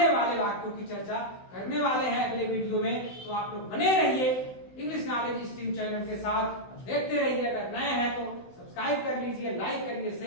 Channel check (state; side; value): late; right; 16 ms